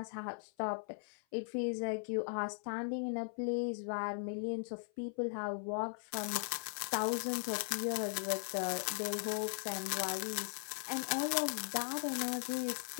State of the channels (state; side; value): silent; right; 52 dB below the other